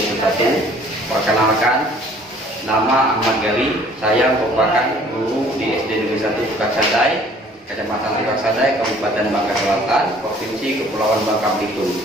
Perkenalkan, nama Ahmad Gali. Saya merupakan guru di SD Negeri 1 Purkasadai, Kecamatan Purkasadai, Kabupaten Bangka Selatan, Provinsi Kepulauan Bangka Belitung.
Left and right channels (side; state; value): both; normal; correlation 0.55